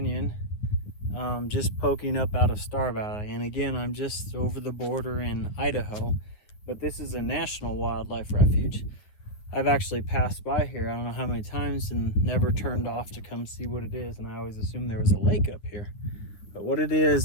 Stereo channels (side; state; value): right; late; 9.9 ms